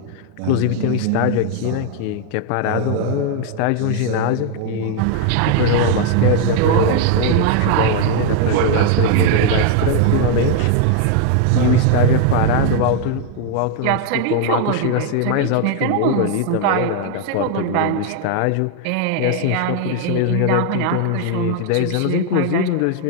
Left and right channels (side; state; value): both; different; correlation 0.00